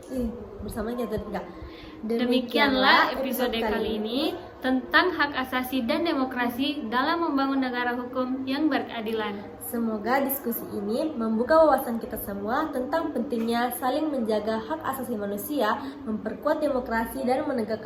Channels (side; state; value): both; identical; correlation 1.00